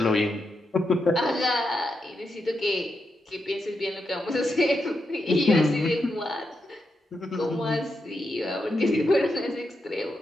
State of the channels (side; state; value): both; normal; correlation 0.85